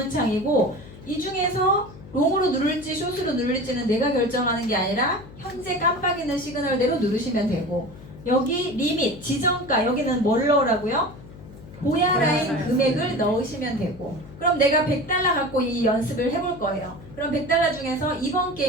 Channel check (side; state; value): left; noise; hum, 18 dB below the sound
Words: 이 중에서 롱으로 누를지 숏으로 누를지는 내가 결정하는 게 아니라 현재 깜빡이는 시그널대로 누르시면 되고 여기 리밋, 지정가 여기는 뭘 넣으라고요? 고야 라인 금액을 넣으시면 되고 그럼 내가 100달러 갖고 이 연습을 해볼 거예요. 그럼 100달러 중에서 이번